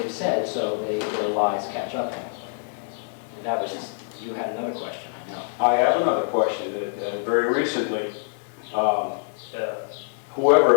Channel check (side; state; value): right; silent; digital silence